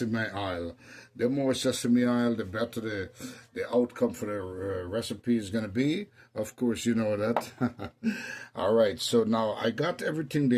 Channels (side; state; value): both; identical; correlation 1.00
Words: oil. The more sesame oil, the better the outcome for the recipe is going to be. Of course, you know that. All right, so now I got everything